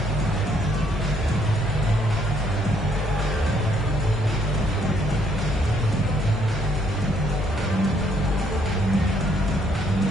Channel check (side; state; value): both; normal; correlation 0.69